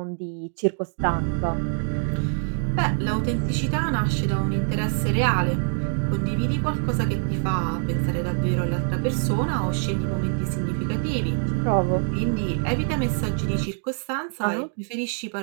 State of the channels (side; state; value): left; silent; 59 dB below the other